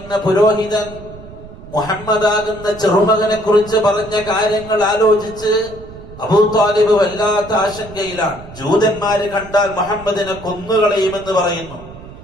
പുരോഹിതൻ മുഹമ്മദാകുന്ന ചെറുമകനെ കുറിച്ച് പറഞ്ഞ കാര്യങ്ങൾ ആലോചിച്ച് അബൂ ത്വാലിബ് വല്ലാത്ത ആശങ്കയിലാണ്. ജൂതന്മാര് കണ്ടാൽ മുഹമ്മദിനെ കൊന്നുകളയുമെന്ന് പറയുന്നു.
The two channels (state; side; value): noise; right; rumble, 16 dB below the sound